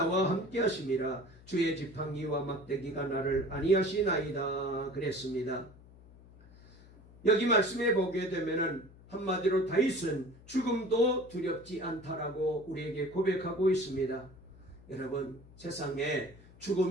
함께 하심이라. 주의 지팡이와 막대기가 나를 안위하시나이다. 그랬습니다. 여기 말씀에 보게 되면은 한마디로 다윗은 죽음도 두렵지 않다라고 우리에게 고백하고 있습니다. 여러분, 세상에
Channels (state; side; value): noise; left; hum, 22 dB below the sound